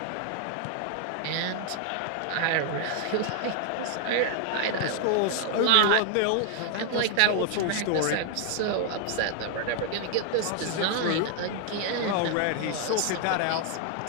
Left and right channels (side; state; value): both; different; correlation 0.00